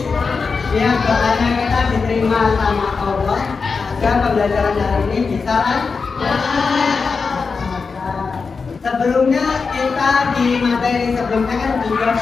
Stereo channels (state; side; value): quieter; right; 4.9 dB